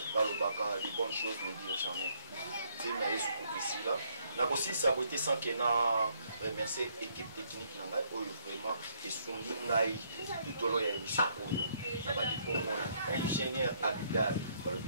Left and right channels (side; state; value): both; inverted; correlation -0.69